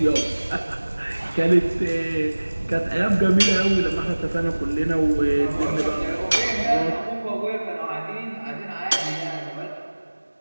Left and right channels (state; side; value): inverted; both; correlation -1.00